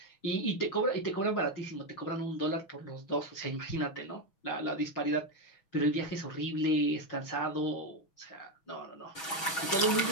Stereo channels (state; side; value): late; right; 6.2 ms